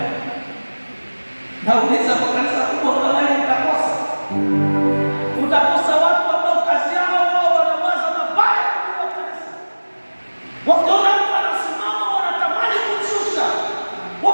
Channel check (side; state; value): both; inverted; correlation -1.00